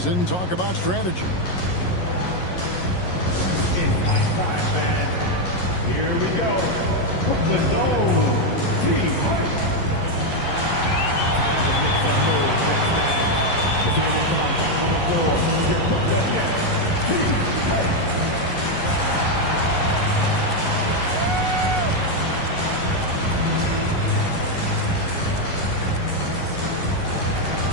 and talk about strategy. Here we go. The zone team.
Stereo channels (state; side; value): late; right; 11 ms